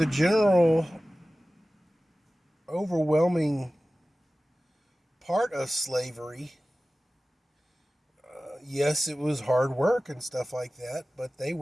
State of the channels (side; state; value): both; normal; correlation 0.97